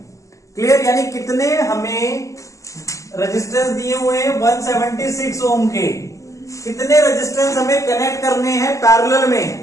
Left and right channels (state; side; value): late; right; 0.16 ms